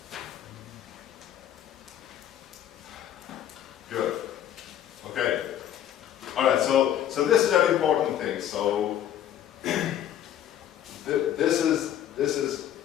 Good. Okay. All right. So this is an important thing. So this is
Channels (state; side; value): quieter; right; 10.8 dB